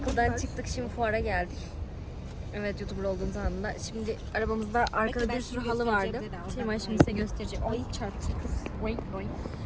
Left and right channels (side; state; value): both; identical; correlation 1.00